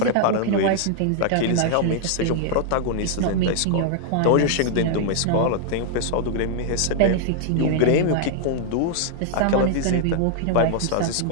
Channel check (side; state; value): both; different; correlation 0.00